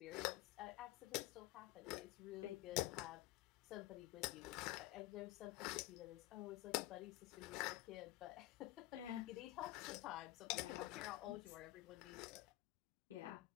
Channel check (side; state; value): right; quieter; 17.5 dB